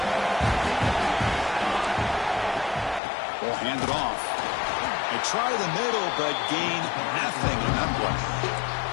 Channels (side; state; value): right; drops out; at 3.0 s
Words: We'll hand it off. They try the middle, but gain nothing in that play.